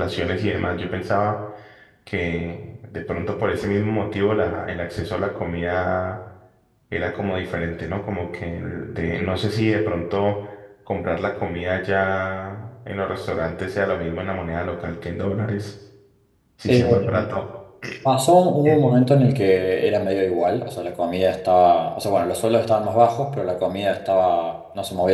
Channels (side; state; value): both; identical; correlation 1.00